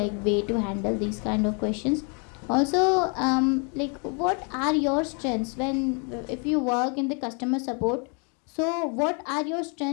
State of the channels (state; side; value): quieter; right; 36.9 dB